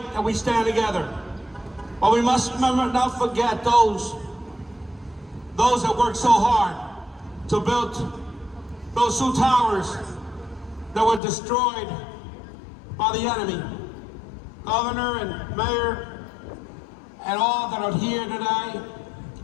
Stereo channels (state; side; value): drops out; right; at 11.2 s